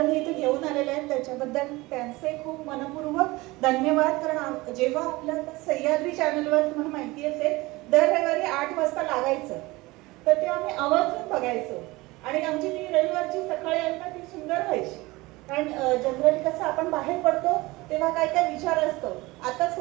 इथे घेऊन आलेले आहेत, त्याच्याबद्दल त्यांचे खूप मनपूर्वक धन्यवाद. कारण जेव्हा आपल्या सह्याद्री चॅनलवर तुम्हाला माहिती असेल दर रविवारी 8 वाजता लागायचं, तर तेव्हा आम्ही आवर्जून बघायचो आणि आमची ती रविवारची सकाळी आहे ना ती सुंदर व्हायची. कारण जनरली कसं आपण बाहेर पडतो तेव्हा काय काय विचार असतो. आता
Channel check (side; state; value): left; quieter; 21.5 dB